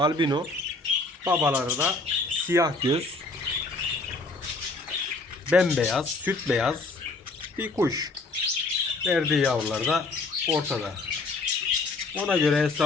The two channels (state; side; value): quieter; right; 3.4 dB